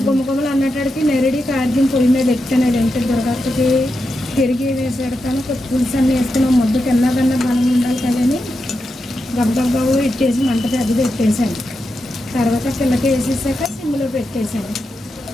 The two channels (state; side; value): normal; both; correlation 0.87